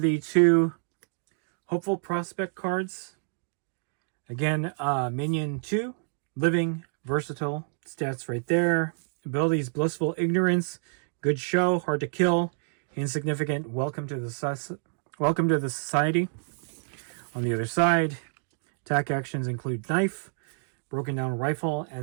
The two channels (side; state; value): left; silent; digital silence